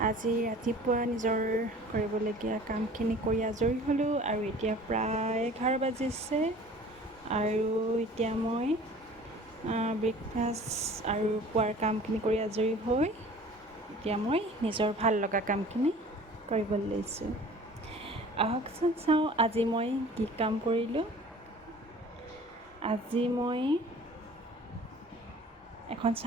আজি ৰাতিপুৱা নিজৰ কৰিবলগীয়া কামখিনি কৰি আজৰি হ'লোঁ আৰু এতিয়া প্ৰায় 11 বাজিছে আৰু এতিয়া মই ব্ৰেকফাষ্ট আৰু পুৱাৰ কামখিনি কৰি আজৰি হৈ এতিয়া মই নিজৰ ভাল লগা কামখিনি কৰিবলৈ লৈছোঁ। আহকচোন চাওঁ আজি মই কি কাম কৰিলোঁ। আজি মই এখন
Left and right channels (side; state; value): both; normal; correlation 0.46